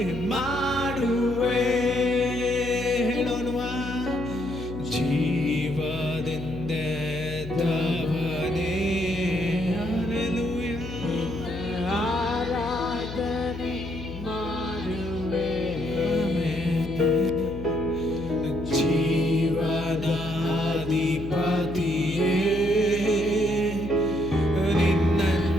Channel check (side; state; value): left; noise; hum, 10 dB below the sound